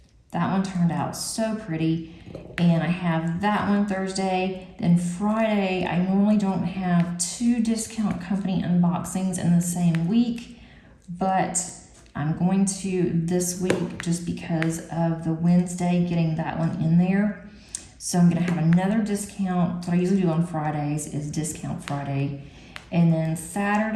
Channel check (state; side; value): identical; both; correlation 1.00